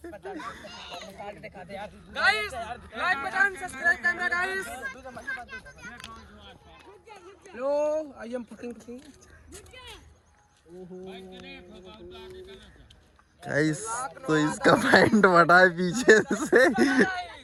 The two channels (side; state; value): both; identical; correlation 1.00